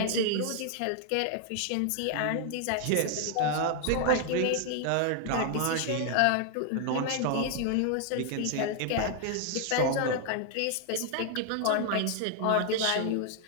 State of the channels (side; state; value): both; different; correlation 0.00